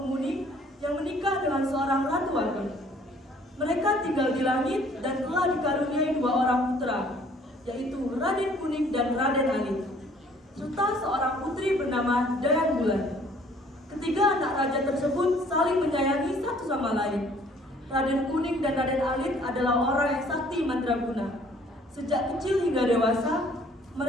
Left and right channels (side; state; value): both; normal; correlation 0.58